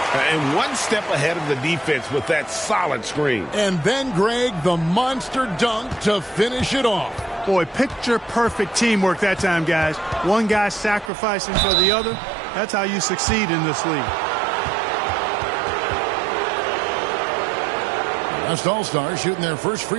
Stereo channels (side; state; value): left; drops out; at 11.1 s